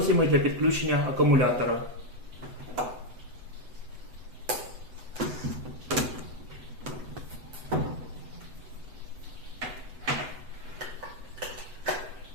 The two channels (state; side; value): late; left; 8.0 ms